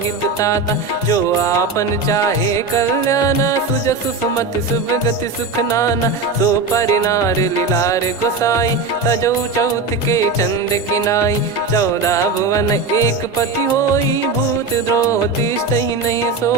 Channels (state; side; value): quieter; left; 4.0 dB